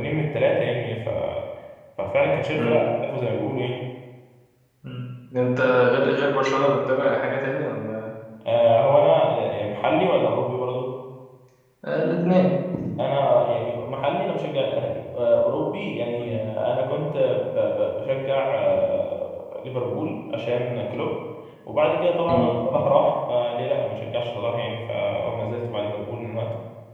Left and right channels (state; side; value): identical; both; correlation 1.00